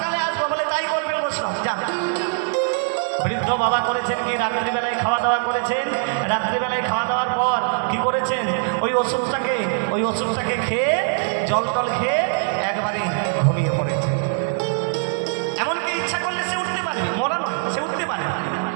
আসবো। বলে তাই করবেন বৈষ্ণব, যা। বৃদ্ধ বাবা করেছেন কি, রাত্রিবেলায় খাওয়া দাওয়া করেছেন। রাত্রিবেলায় খাওয়া দাওয়ার পর কি করেছেন, ওই ওষুধটাকে খেয়ে জল টল খেয়ে একবারে ঘুমিয়ে পড়েছে। এমনকি ইচ্ছা করলে সে উঠতে পারে, মরা নয়, সে উঠতে পারে।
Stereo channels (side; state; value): left; silent; 58 dB below the other